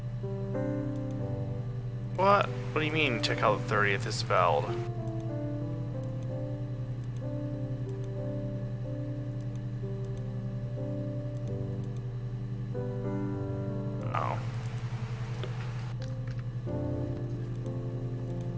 What? What do you mean? Check how the 30th is spelled. Oh.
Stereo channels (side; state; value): both; identical; correlation 1.00